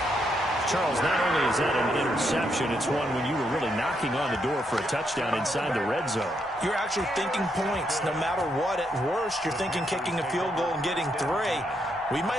Charles, not only is that an interception, it's one when you were really knocking on the door for a touchdown inside the red zone. You're actually thinking points. No matter what, at worst, you're thinking kicking a field goal and getting 3. We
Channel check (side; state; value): both; normal; correlation 0.78